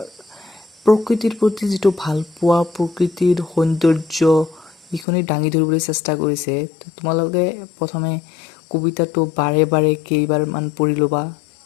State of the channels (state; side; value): drops out; right; at 5.1 s